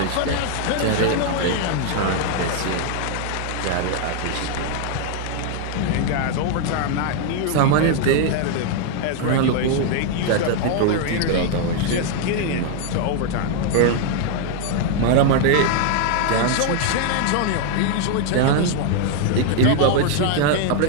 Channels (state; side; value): different; both; correlation 0.00